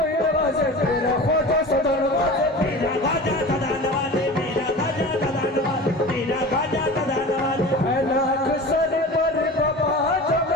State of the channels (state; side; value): normal; both; correlation 0.35